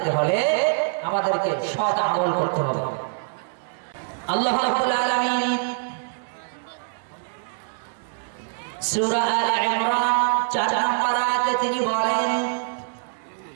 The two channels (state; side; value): silent; left; 62 dB below the other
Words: হলে আমাদেরকে সৎ আমল করতে হবে। আল্লাহ রাব্বুল আলামিন সূরা আলে ইমরান 4 নম্বর আয়াতে তিনি বলেন